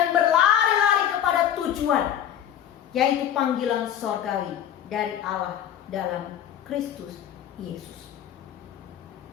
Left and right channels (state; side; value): quieter; right; 10.2 dB